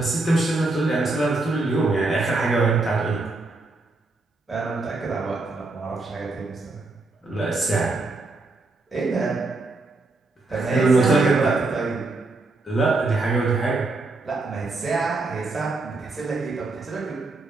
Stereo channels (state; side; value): quieter; left; 3.3 dB